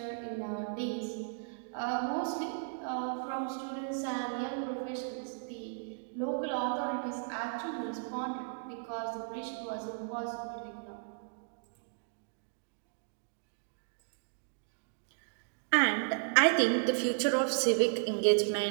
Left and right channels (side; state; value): left; silent; digital silence